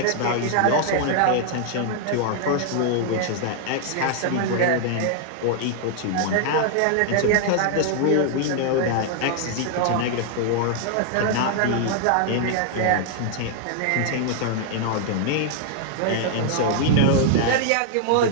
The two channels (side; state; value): both; different; correlation 0.00